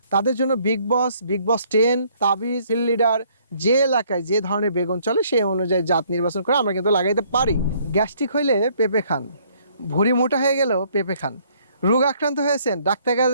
তাদের জন্য বিগ বস 10, তাবিজ, ফিল্ড লিডার, যে এলাকায় যে ধরনের বেগুন চলে সেই অনুযায়ী জাত নির্বাচন করে আমরা কিন্তু লাগাইতে পারি। গ্যাস্ট্রিক হইলে পেঁপে খান, ভুঁড়ি মোটা হয়ে গেলেও পেঁপে খান, রোগ আক্রান্ত হয়েছেন ডাক্তার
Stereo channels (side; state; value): both; inverted; correlation -0.64